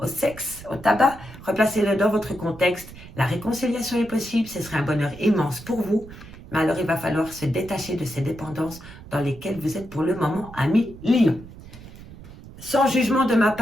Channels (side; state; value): right; noise; rumble, 17 dB below the sound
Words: sexe, au tabac. Replacez-le dans votre contexte. La réconciliation est possible, ce serait un bonheur immense pour vous. Mais alors, il va falloir se détacher de ces dépendances dans lesquelles vous êtes pour le moment, ami Lion. Sans jugement de ma